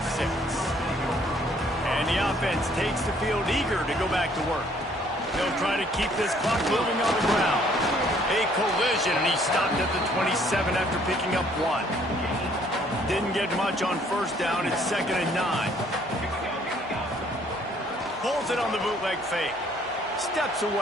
And the offense takes the field eager to go back to work. They'll try to keep this clock moving on the ground. A collision, and he stopped at the 27 after picking up 1. Didn't get much on 1st down. It's 2nd and 9. Pulls it on the bootleg fake. Steps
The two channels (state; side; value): normal; both; correlation 0.62